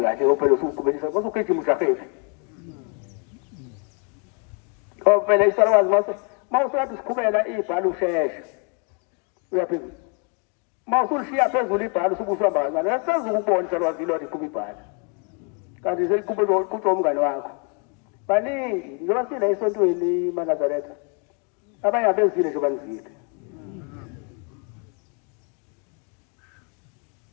kahle ophela usuqhubelisa basugijima ushafefe phela isalwazi mawusathi siqhubela ibhala usheshe uyaphezulu mawusulishiya phezulu ibhala usukuhamba kancane asezukubona ukubona isalwazi lo liqhuba ibhala kanti seliqhubela kutsho umngane wakho baningi njengoba sila esontweni maNazaretha abanye abezile nje banizile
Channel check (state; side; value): quieter; right; 36.2 dB